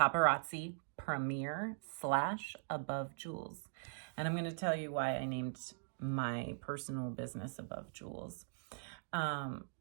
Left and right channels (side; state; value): left; silent; digital silence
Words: premier / Above Jewels. And I'm going to tell you why I named my personal business Above Jewels. I'll